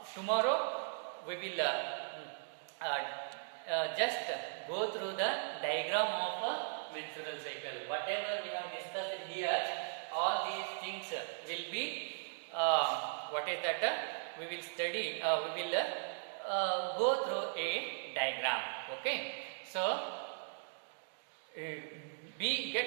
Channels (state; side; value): silent; left; digital silence